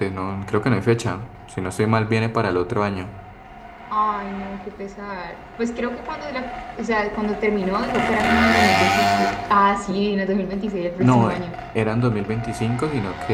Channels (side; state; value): both; identical; correlation 1.00